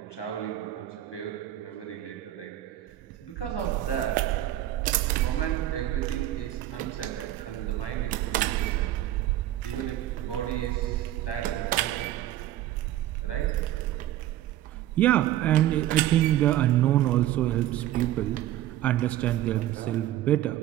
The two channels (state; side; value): quieter; left; 13.5 dB